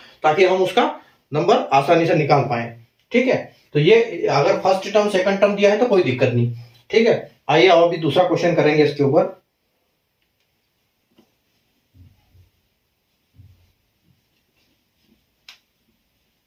ताकि हम उसका नंबर आसानी से निकाल पाए। ठीक है, तो ये अगर फर्स्ट टर्म सेकंड टर्म दिया है तो कोई दिक्कत नहीं। ठीक है, आइए अब अभी दूसरा क्वेश्चन करेंगे इसके ऊपर।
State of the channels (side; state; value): both; identical; correlation 1.00